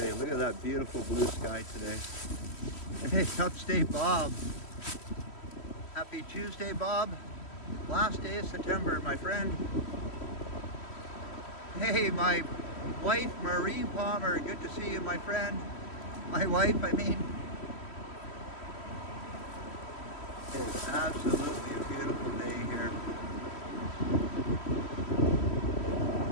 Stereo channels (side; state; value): right; late; 3.1 ms